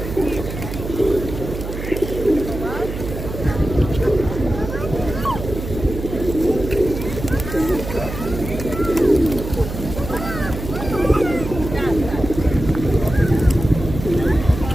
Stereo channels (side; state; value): right; noise; hum, 7 dB below the sound